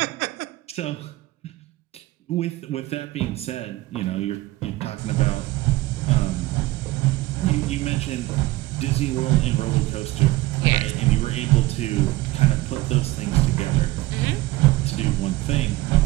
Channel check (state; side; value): quieter; left; 18.4 dB